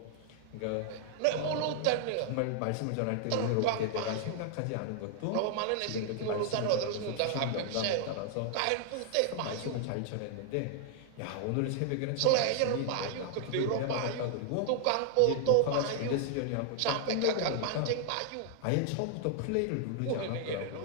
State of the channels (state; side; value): different; both; correlation 0.00